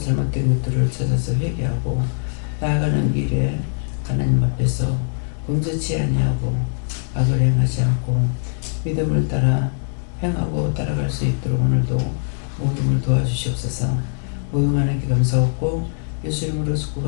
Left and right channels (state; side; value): silent; right; digital silence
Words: 것들을 찾아서 회개하고 나아가는 길에 하나님 앞에서 범죄치 아니하고 악을 행하지 않고 믿음을 따라 행하고 따라갈 수 있도록 오늘도 모둠을 도와주시옵소서. 모든 하나님께 감사하고 예수 이름으로